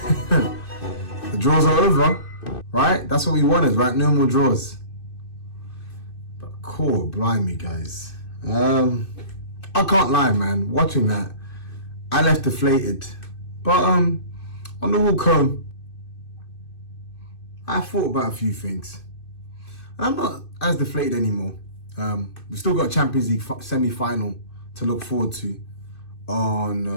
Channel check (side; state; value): right; late; 2.6 ms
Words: The draws are over, right? That's what we wanted, right? No more draws. But cool, blimey, guys. I can't lie, man. Watching that, I left deflated. But on the walk home, I thought about a few things. I'm not as deflated anymore. We've still got a Champions League semi-final to look forward to